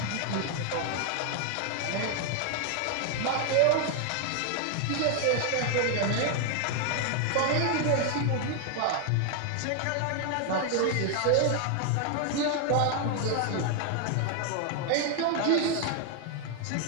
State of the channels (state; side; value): different; both; correlation 0.00